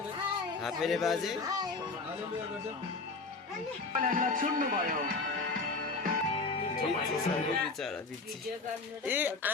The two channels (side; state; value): right; quieter; 3.8 dB